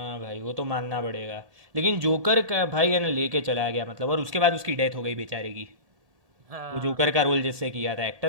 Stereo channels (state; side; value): late; left; 1.8 ms